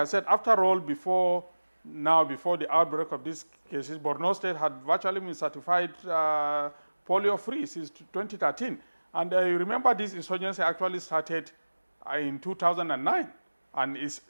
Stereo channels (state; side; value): inverted; both; correlation -1.00